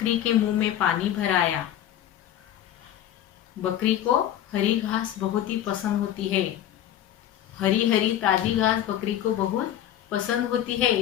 के मुंह में पानी भर आया। बकरी को हरी घास बहुत ही पसंद होती है। हरी हरी ताजी घास बकरी को बहुत पसंद होती है।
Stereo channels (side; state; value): right; quieter; 11.4 dB